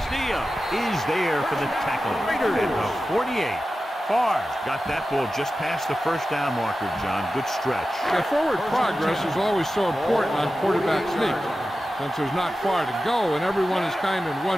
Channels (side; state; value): both; normal; correlation 0.93